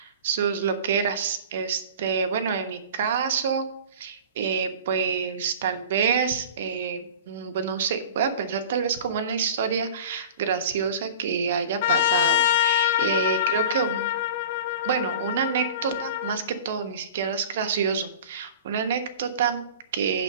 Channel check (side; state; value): both; inverted; correlation -0.38